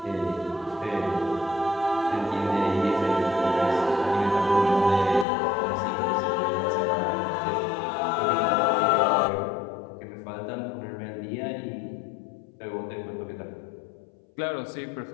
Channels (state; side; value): drops out; right; at 5.2 s